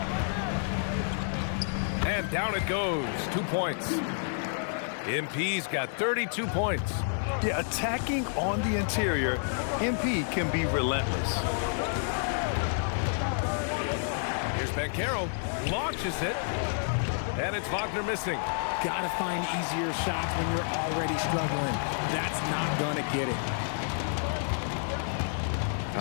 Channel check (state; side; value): silent; right; digital silence